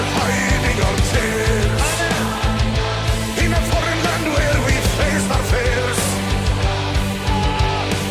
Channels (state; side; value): identical; both; correlation 1.00